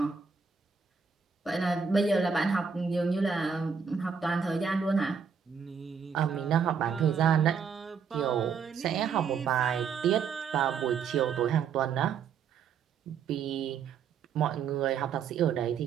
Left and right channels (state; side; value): quieter; left; 6.3 dB